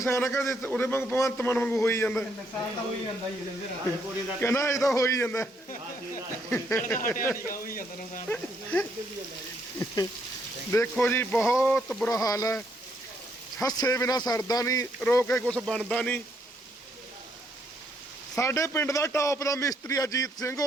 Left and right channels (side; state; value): both; normal; correlation 0.73